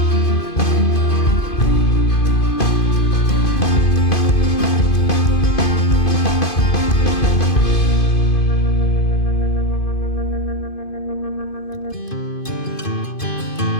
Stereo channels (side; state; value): right; late; 2.5 ms